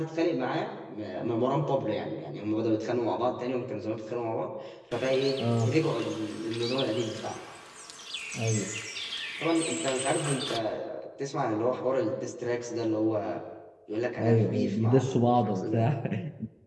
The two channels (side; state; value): both; identical; correlation 1.00